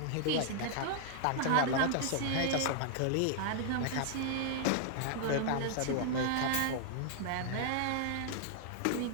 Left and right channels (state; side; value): different; both; correlation -0.01